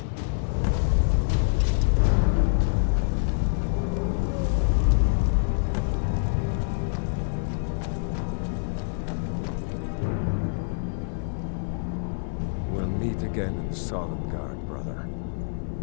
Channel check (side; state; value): right; silent; 58 dB below the other